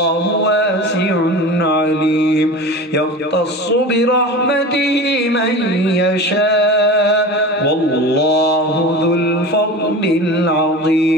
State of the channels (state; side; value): normal; both; correlation 0.32